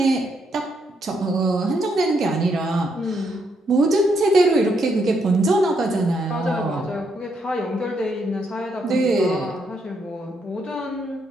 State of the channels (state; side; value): normal; both; correlation 0.76